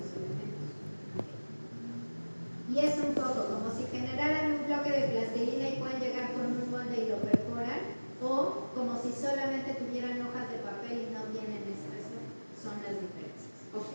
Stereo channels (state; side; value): inverted; both; correlation -1.00